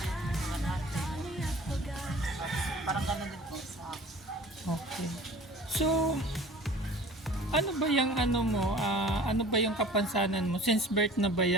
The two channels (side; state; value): both; normal; correlation 0.45